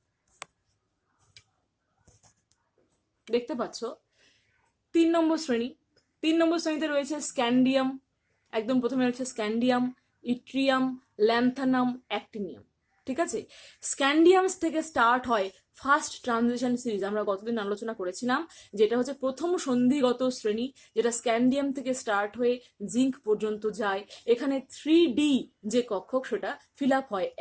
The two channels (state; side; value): identical; both; correlation 1.00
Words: দেখতে পাচ্ছ 3 নম্বর শ্রেণী। 3 নম্বর শ্রেণীতে রয়েছে স্ক্যান্ডিয়াম, একদম প্রথমে রয়েছে স্ক্যান্ডিয়াম, ইট্রিয়াম, ল্যান্থানাম, অ্যাক্টিনিয়াম। ঠিক আছে, স্ক্যান্ডিয়াম থেকে স্টার্ট হয় ফার্স্ট ট্রানজিশন সিরিজ। আমরা গতদিন আলোচনা করেছিলাম যেটা হচ্ছে প্রথম সন্ধিগত শ্রেণী, যেটা স্ক্যান্ডিয়াম থেকে স্টার্ট হয়ে জিঙ্ক পর্যন্ত যায়। এখানে 3D যে কক্ষক, সেটা ফিল আপ হয়